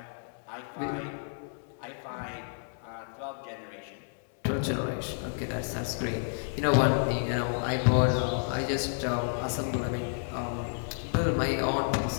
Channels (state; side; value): silent; right; 57 dB below the other